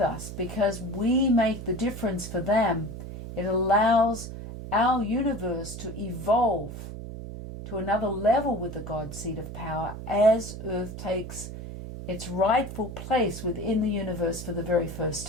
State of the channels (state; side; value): noise; right; hum, 9 dB below the sound